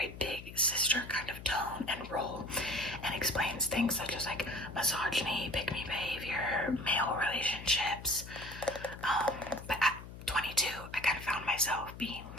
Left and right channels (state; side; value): noise; left; hum, 13 dB below the sound